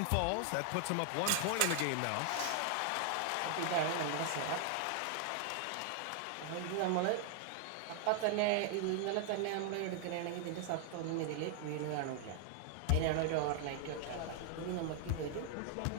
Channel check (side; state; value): both; different; correlation 0.00